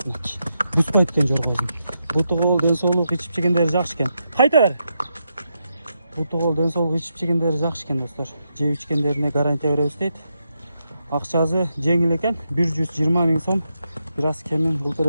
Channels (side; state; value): both; inverted; correlation -0.84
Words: Бүспөйт экен жоргобуз. Бутугол ден соолук ичип жегендери жакшы экен. Кайта бер. Бутугол ден соолук ичип жегендери жакшы экен достор. Жеп ичкендерине гарантия беребиз дейт. Акчасы жеңил экен, 120 000 сом. Biraz kemin bul